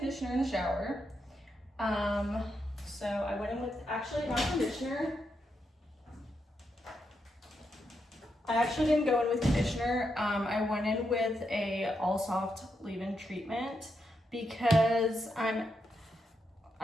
in the shower. So I went in with, actually not conditioner. I actually didn't go in with conditioner. I went in with a all soft leave-in treatment because I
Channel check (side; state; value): both; normal; correlation 0.83